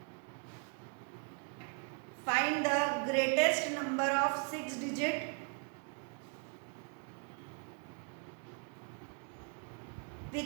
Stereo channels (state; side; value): quieter; left; 38.0 dB